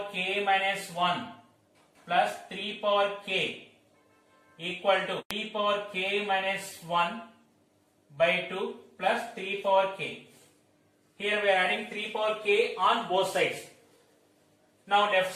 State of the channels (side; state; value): both; identical; correlation 1.00